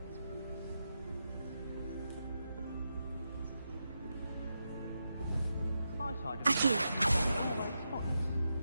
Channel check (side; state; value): both; inverted; correlation -0.86